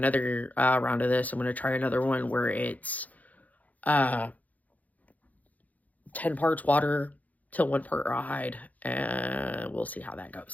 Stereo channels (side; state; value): right; late; 0.077 ms